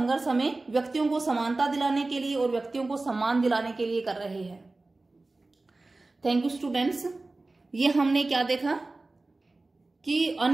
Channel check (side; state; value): left; quieter; 3.2 dB